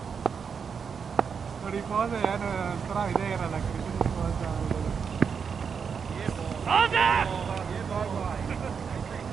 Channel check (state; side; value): quieter; left; 6.3 dB